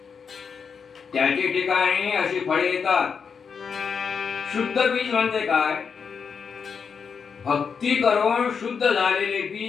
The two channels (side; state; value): right; quieter; 6.1 dB